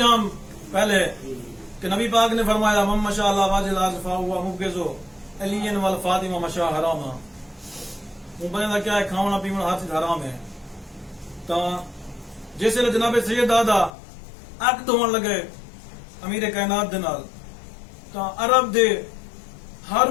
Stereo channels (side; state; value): right; drops out; at 13.9 s